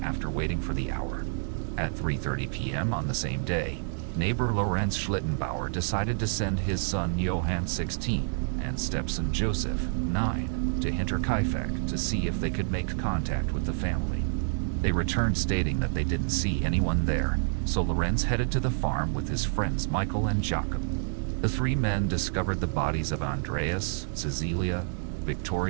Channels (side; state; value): left; silent; digital silence